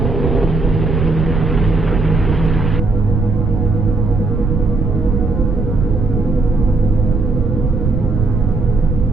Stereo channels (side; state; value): right; noise; rumble, 1 dB below the sound